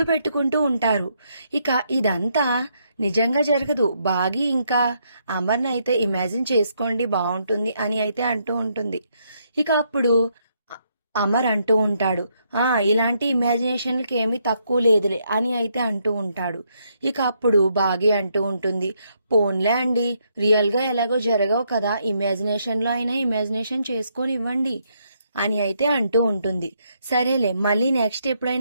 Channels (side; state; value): both; inverted; correlation -0.75